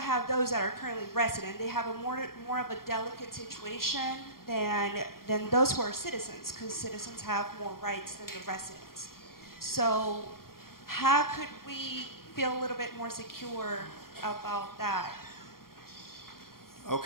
those that are currently resident. They have a more of a delicate situation than those who are citizens, because citizens have more rights than the residents. So how could we feel a little bit more secure about that?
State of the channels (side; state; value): right; late; 0.92 ms